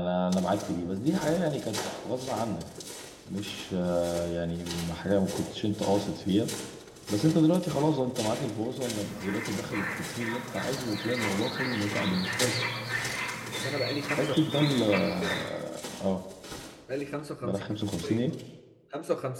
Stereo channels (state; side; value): identical; both; correlation 1.00